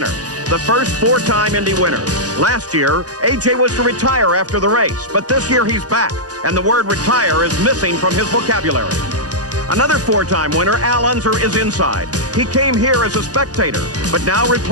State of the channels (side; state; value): left; late; 0.68 ms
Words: the first 4-time Indy winner. Last year, A.J. was to retire after the race, but this year he's back, and the word retire is missing from his vocabulary. Another 4-time winner, Al Unser, is inside. He came here as a spectator, but now